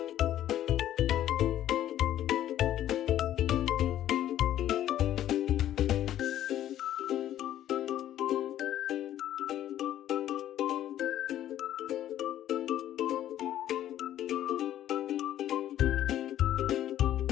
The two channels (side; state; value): right; quieter; 12.1 dB